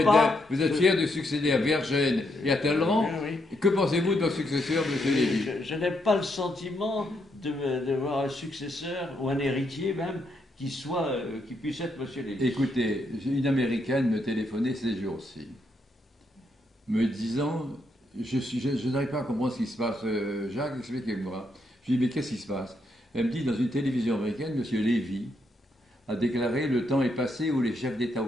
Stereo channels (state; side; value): normal; both; correlation 0.78